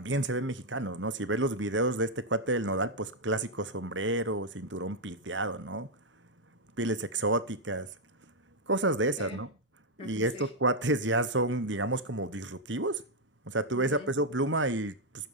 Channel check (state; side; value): normal; both; correlation -0.01